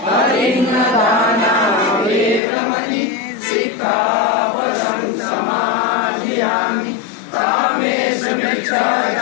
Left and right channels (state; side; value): drops out; right; at 2.4 s